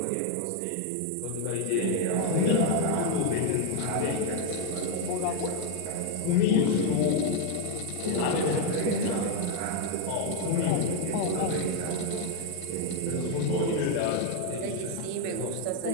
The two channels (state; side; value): different; both; correlation 0.01